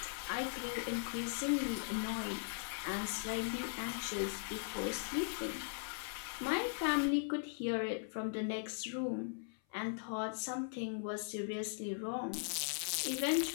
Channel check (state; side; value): silent; right; 51 dB below the other